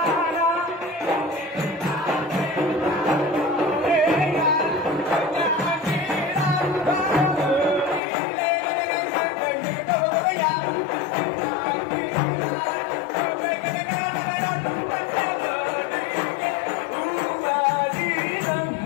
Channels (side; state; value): right; drops out; at 8.0 s